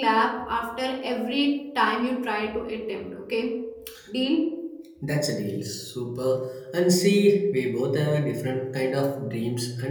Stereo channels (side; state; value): both; identical; correlation 1.00